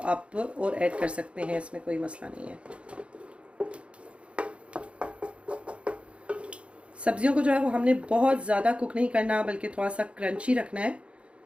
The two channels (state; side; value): late; left; 0.060 ms